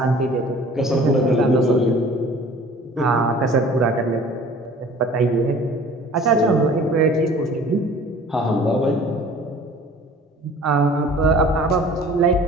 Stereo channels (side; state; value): both; normal; correlation 0.48